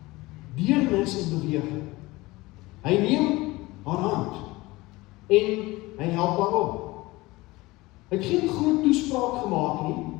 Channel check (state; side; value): quieter; right; 20.8 dB